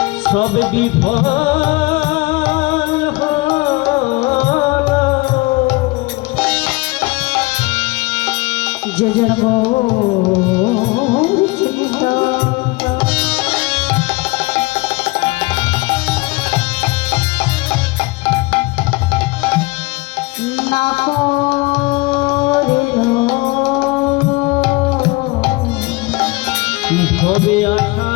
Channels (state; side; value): quieter; right; 24.0 dB